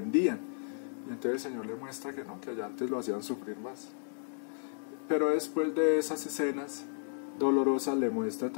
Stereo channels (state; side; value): silent; right; digital silence